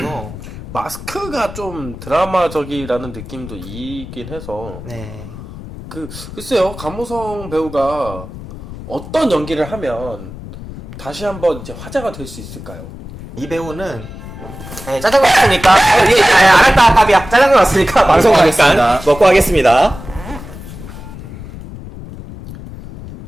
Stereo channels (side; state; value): left; noise; rumble, 13 dB below the sound